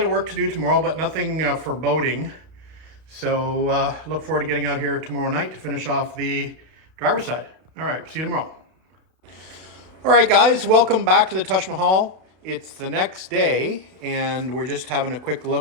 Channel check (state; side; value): late; left; 32 ms